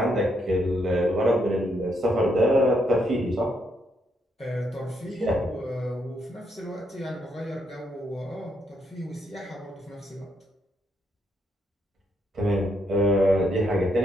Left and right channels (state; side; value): normal; both; correlation 0.76